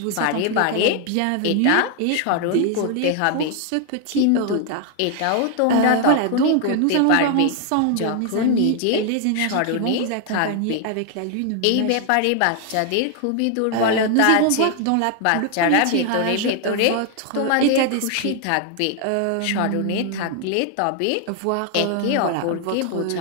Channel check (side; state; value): both; different; correlation 0.00